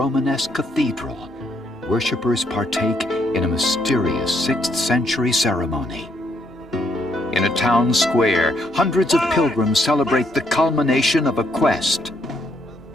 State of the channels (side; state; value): both; normal; correlation 0.72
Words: cathedral, worshippers partake in a mysterious 6th century ceremony. In a town square, hundreds of pilgrims celebrate the culmination of a quest.